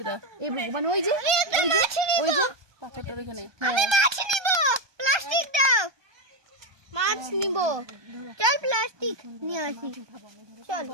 না। এই ভগবান ওই যে ওই যে পাথরটার এখানে। আমি মাছ নিব প্লাস্টিক দাও মাছ নিব চল প্লাস্টিক নিয়ে আসি চল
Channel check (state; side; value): late; left; 1.2 ms